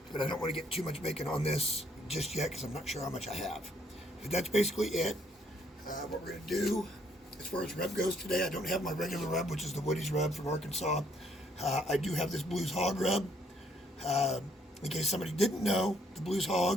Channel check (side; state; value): both; normal; correlation 0.68